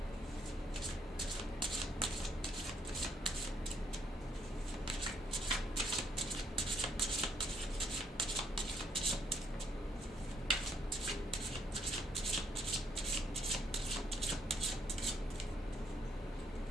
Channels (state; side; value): normal; both; correlation 0.71